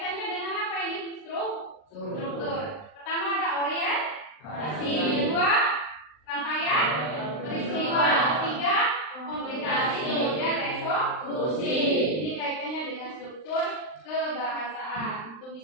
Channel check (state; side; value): late; right; 39 ms